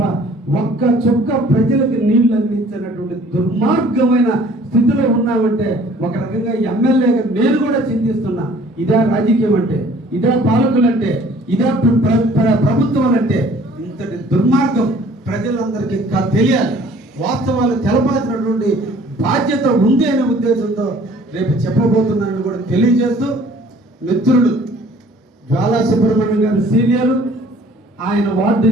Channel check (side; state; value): both; normal; correlation 0.54